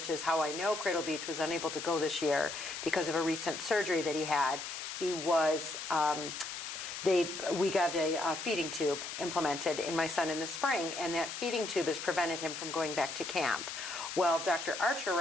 is how I know Cradle Beach, was unable to go this year because of a recent surgery that he had. He was, we got a feeding tube implemented in my son in the spring, and that feeding tube has prevented him from going back to camp. Well, Dr. Archer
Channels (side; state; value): left; noise; hiss, 7 dB below the sound